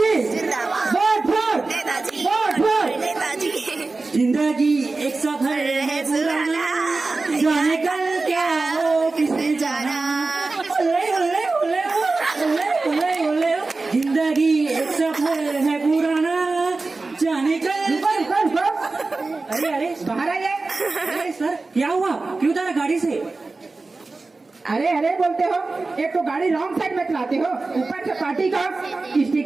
वोट वोट नेताजी, वोट वोट। नेताजी। जिंदगी एक सफर है पुराना, जाने कल क्या हो किसने जाना। ओले ओले ओले ओले ओले ओले। जिंदगी एक सफर है पुराना, जाने कल। अरे अरे बाहर आइए। अरे सर, क्या हुआ? क्यों उतरा गाड़ी से? अरे अरे बोलते हो, एक तो गाड़ी रॉन्ग साइड में चलाते हो, ऊपर से पार्टी का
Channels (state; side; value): quieter; left; 3.6 dB